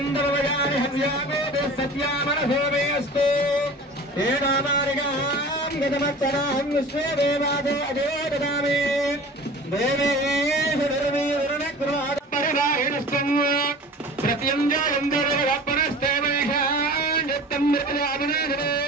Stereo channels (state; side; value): normal; both; correlation 0.40